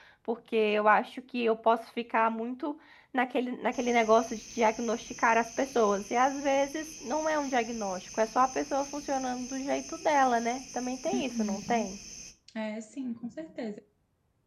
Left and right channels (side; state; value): both; identical; correlation 1.00